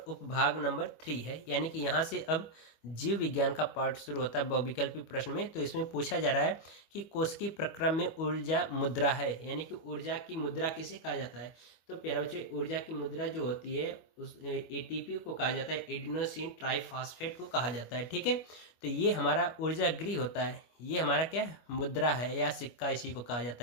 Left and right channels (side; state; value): right; late; 25 ms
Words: नंबर 3 है, यानी कि यहाँ से अब जीव विज्ञान का पार्ट शुरू होता है बहुविकल्पी प्रश्न में। तो इसमें पूछा जा रहा है कि कोशिकीय प्रक्रम में ऊर्जा मुद्रा है, यानी कि ऊर्जा की मुद्रा किसे कहा जाता है। तो प्यारे बच्चों ऊर्जा की मुद्रा जो होती है उस ATP को कहा जाता है, एडिनोसिन ट्राइफॉस्फेट को कहा जाता है। ठीक है, तो ये हमारा ऊर्जा गृह होता है, ये हमारा क्या मुद्रा है या सिक्का, इसी को कहा